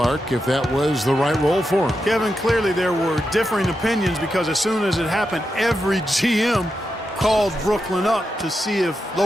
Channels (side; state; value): both; normal; correlation 0.87